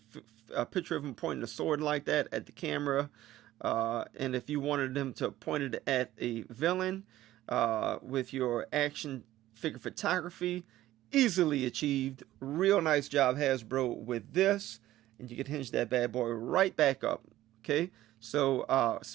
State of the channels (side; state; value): left; quieter; 14.7 dB